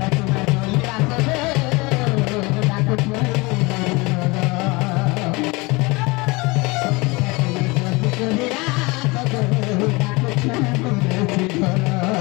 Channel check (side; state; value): right; quieter; 25.0 dB